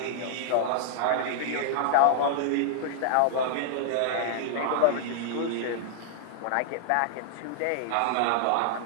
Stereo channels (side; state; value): both; different; correlation -0.01